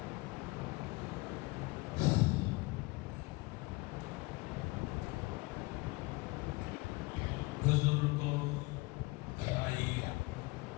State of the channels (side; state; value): right; quieter; 24.4 dB